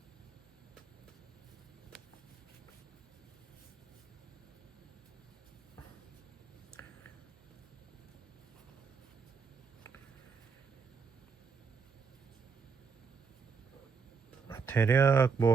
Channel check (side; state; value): left; quieter; 5.4 dB